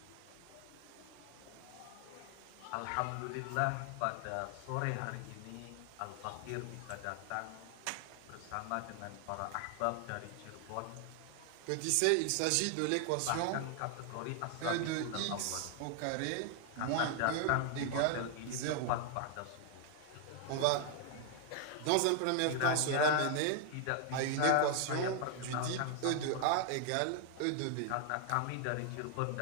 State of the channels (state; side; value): different; both; correlation 0.00